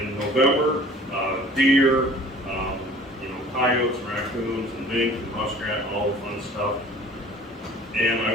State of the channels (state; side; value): normal; both; correlation 0.48